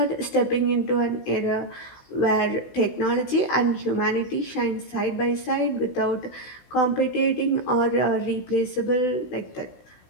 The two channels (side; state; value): right; late; 16 ms